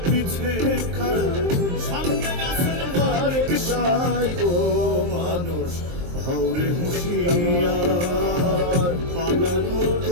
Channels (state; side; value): late; left; 23 ms